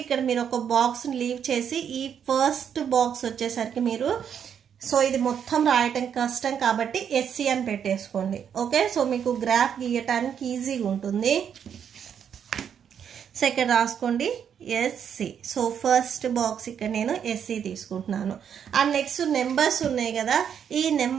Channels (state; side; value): quieter; left; 8.2 dB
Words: ఇక్కడ మీరు ఒక బాక్స్ లీవ్ చేసి ఈ ఫస్ట్ బాక్స్ వచ్చేసరికి మీరు సో ఇది మొత్తం రాయటం కష్టం కాబట్టి ఎస్సీ అని పెట్టేసుకోండి. ఓకే, సో మీకు గ్రాఫ్ గీయటానికి ఈజీగా ఉంటుంది. సో ఇక్కడ రాసుకోండి ఎస్సీ. సో ఫస్ట్ బాక్స్ ఇక్కడ నేను ఎస్సీ తీసుకుంటున్నాను. అండ్ నెక్స్ట్ నెంబర్స్ ఉన్నాయి కదా, ఈ